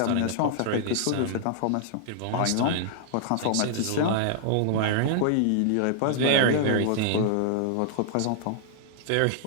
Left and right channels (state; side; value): different; both; correlation -0.01